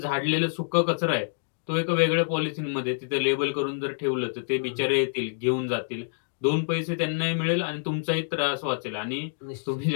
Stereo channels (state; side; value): silent; right; digital silence